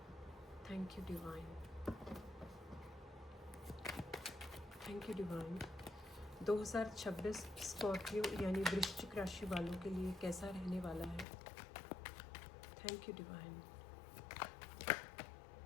Thank you divine, thank you divine. 2026 Scorpio यानी वृश्चिक राशि वालों के लिए कैसा रहने वाला है। Thank you divine.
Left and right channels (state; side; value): drops out; right; at 11.2 s